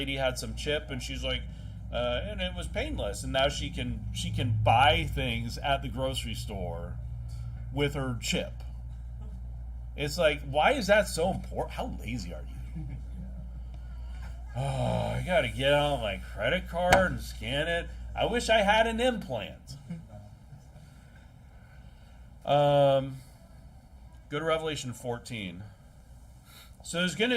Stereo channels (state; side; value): identical; both; correlation 1.00